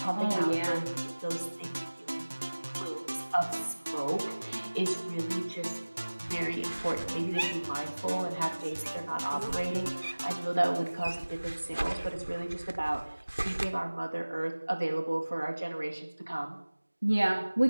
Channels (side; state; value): both; inverted; correlation -1.00